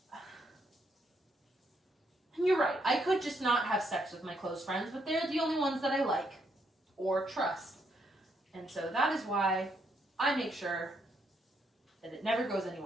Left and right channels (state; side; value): normal; both; correlation 0.75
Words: you're right, I could just not have sex with my close friends, but they're the only ones that I like or trust. And so that is why I make sure that it never goes